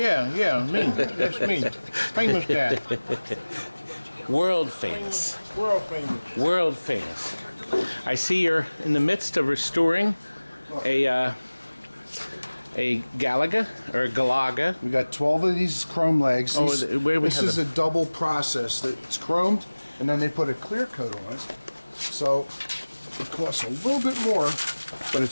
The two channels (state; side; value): inverted; both; correlation -1.00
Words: That's me. Famous guy. World famous. World famous. World famous. I see you're in the midst of restoring a Galaga or a Galaga. We got 12 of these chrome legs. This is a double process. It's chromed, and then they put a clear coat on it. So it costs a little bit more, but